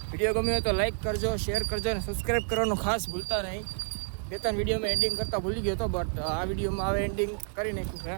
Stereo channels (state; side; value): silent; left; digital silence